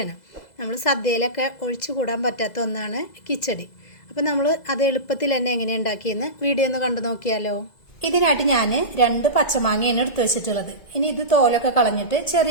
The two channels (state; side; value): late; right; 2.0 ms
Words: നമ്മൾ സദ്യയിലൊക്കെ ഒഴിച്ചുകൂടാൻ പറ്റാത്ത ഒന്നാണ് കിച്ചടി. അപ്പോൾ നമ്മൾ അത് എളുപ്പത്തിൽ തന്നെ എങ്ങനെയാണ് ഉണ്ടാക്കിയെന്ന് വീഡിയോ ഒന്ന് കണ്ടു നോക്കിയാലോ. ഇതിനായിട്ട് ഞാൻ 2 പച്ചമാങ്ങയാണ് എടുത്തു വെച്ചിട്ടുള്ളത്. ഇനി ഇത് തോലൊക്കെ കളഞ്ഞിട്ട്